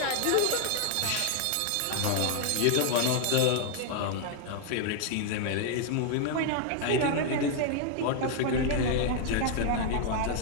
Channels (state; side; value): different; both; correlation 0.00